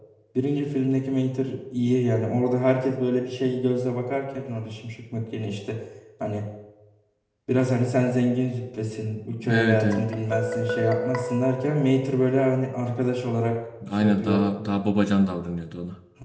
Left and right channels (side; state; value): both; identical; correlation 1.00